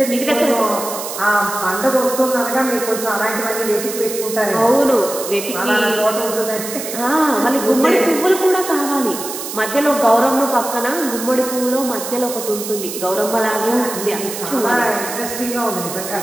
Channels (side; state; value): right; noise; hiss, 8 dB below the sound